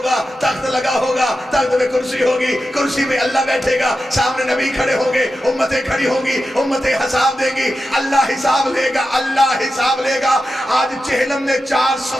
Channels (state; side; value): normal; both; correlation 0.91